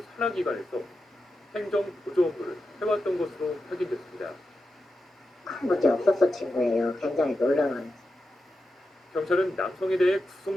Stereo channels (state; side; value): normal; both; correlation 0.90